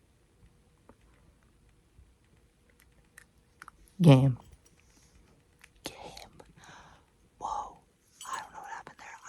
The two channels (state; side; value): identical; both; correlation 1.00